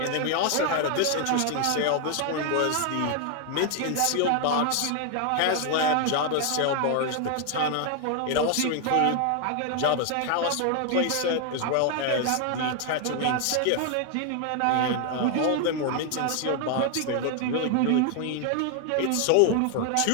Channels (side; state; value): both; different; correlation 0.00